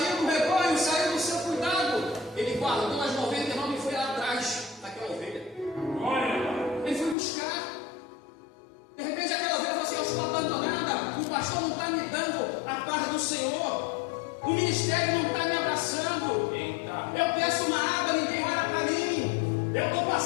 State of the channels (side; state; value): right; drops out; at 7.2 s